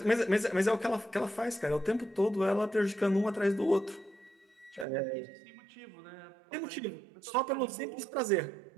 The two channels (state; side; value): drops out; left; at 4.9 s